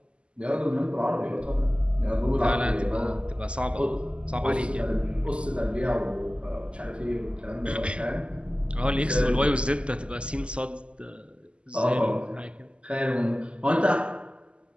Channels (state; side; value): late; left; 0.054 ms